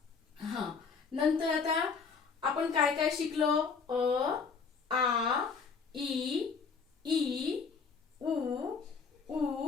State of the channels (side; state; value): right; quieter; 5.3 dB